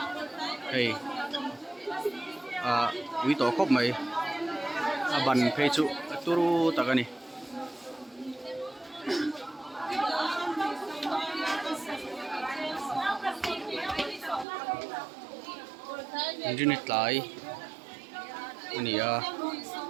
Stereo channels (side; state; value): left; drops out; at 14.5 s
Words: hei pui to khop mai ban phei chu turu takani Injini tlai ania